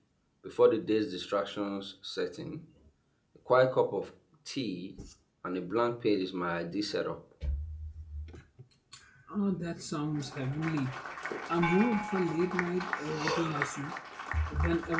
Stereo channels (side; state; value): both; identical; correlation 1.00